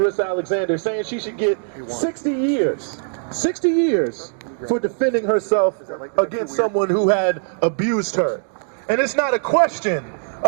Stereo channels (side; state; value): left; silent; digital silence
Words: Alexander, saying she should get 60 years for defending herself against someone who had abused her. And it's not a question